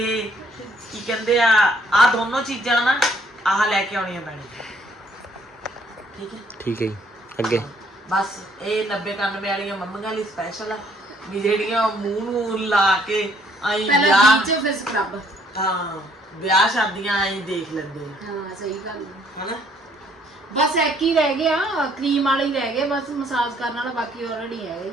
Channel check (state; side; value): normal; both; correlation 0.65